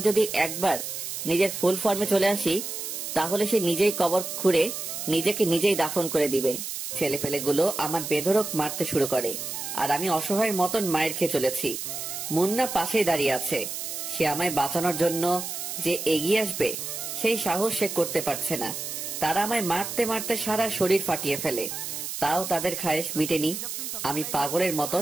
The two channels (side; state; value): right; noise; hiss, 6 dB below the sound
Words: যদি একবার নিজের ফুল ফর্মে চলে আসি তাহলে সে নিজেই কবর খুঁড়ে নিজেকে নিজেই দাফন করে দিবে। ছেলেপেলেগুলো আমার বেধড়ক মারতে শুরু করে, আর আমি অসহায়ের মতন মায়ের খেয়ে চলেছি। মুন্না পাশেই দাঁড়িয়ে আছে। সে আমায় বাঁচানোর জন্য যে এগিয়ে আসবে সেই সাহস সে করতে পারছে না। তারা আমায় মারতে মারতে সারা শরীর ফাটিয়ে ফেলে, তাও তাদের খায়েশ মিটেনি। আমি পাগলের